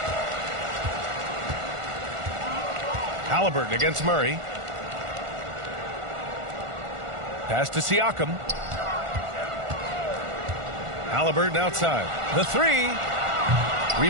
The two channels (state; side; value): late; left; 1.4 ms